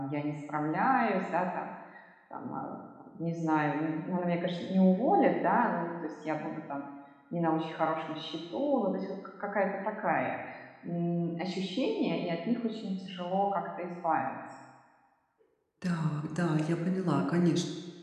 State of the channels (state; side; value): identical; both; correlation 1.00